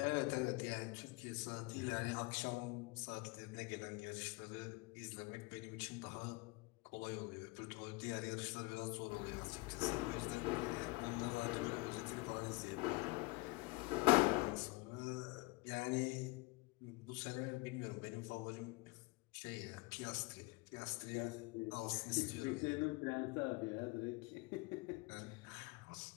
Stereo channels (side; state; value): right; quieter; 24.4 dB